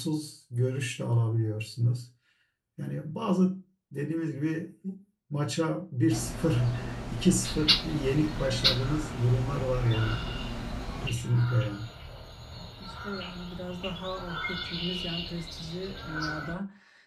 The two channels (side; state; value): both; identical; correlation 1.00